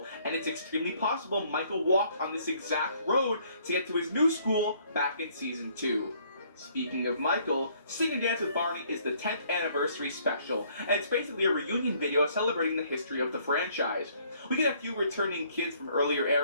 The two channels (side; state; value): both; inverted; correlation -0.63